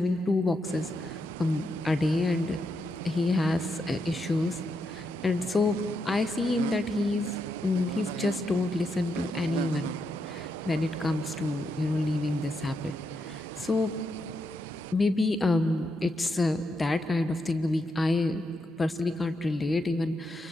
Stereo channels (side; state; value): both; normal; correlation 0.82